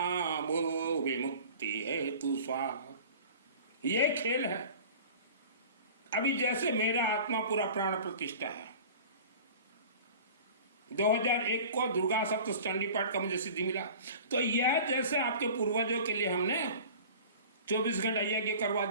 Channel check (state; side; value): inverted; both; correlation -0.42